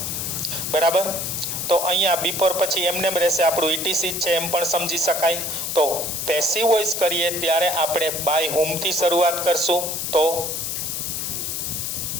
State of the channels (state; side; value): noise; left; hiss, 3 dB below the sound